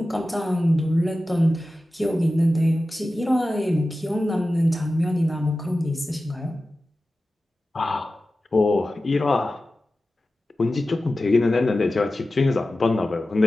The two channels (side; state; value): both; normal; correlation 0.95